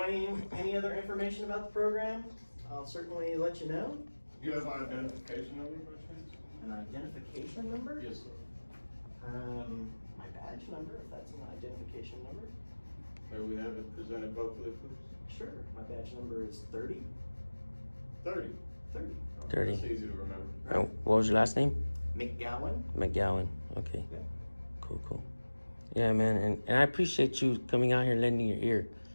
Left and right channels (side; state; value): both; inverted; correlation -1.00